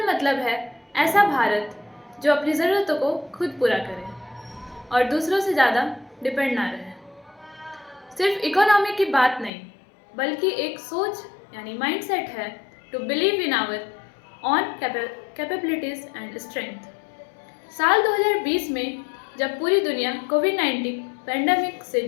मतलब है ऐसा भारत जो अपनी ज़रूरतों को खुद पूरा करे और दूसरों से ज़्यादा डिपेंड ना रहे। सिर्फ इकोनॉमी की बात नहीं बल्कि एक सोच यानी माइंडसेट है to believe in our own capabilities and strength. साल 2020 में जब पूरी दुनिया कोविड-19 पैंडेमिक से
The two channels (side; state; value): right; drops out; at 9.5 s